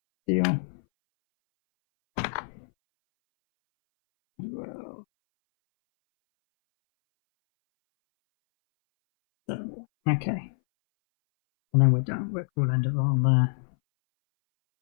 deal. Well, 7 more. Okay. And then we're done. We'll end it on there.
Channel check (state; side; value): silent; right; 61 dB below the other